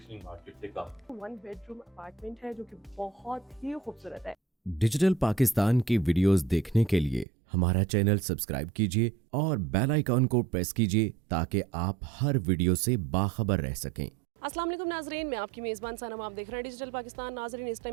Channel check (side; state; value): left; drops out; at 7.2 s